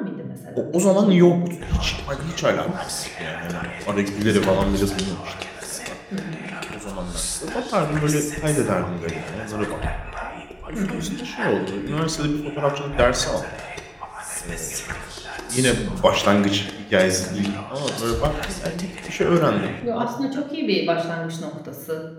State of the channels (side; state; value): both; identical; correlation 1.00